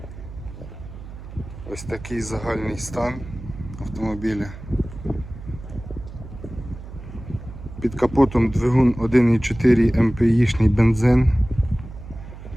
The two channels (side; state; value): right; noise; hum, 14 dB below the sound